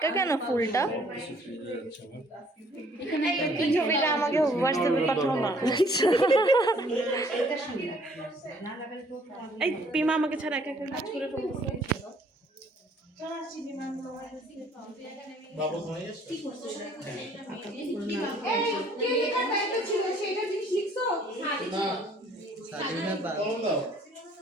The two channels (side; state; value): both; normal; correlation 0.60